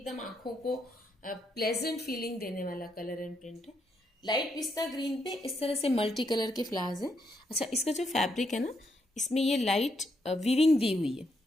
आंखों को प्लेजेंट फीलिंग देने वाला कलर एंड प्रिंट है। लाइट पिस्ता ग्रीन पे इस तरह से मल्टी कलर के फ्लावर्स हैं। अच्छा, इसका जो फैब्रिक है ना, इसमें ये लाइट वीविंग दी हुई है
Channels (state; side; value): normal; both; correlation 0.78